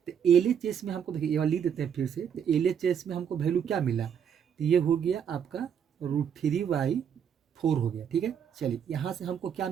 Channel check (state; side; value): quieter; left; 8.1 dB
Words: LHS में हमको देखिए ये वाला लिख देते हैं फिर से, तो LHS में हमको वैल्यू क्या मिला, तो ये हो गया आपका √3/4 हो गया। ठीक है, चलिए यहाँ से हमको क्या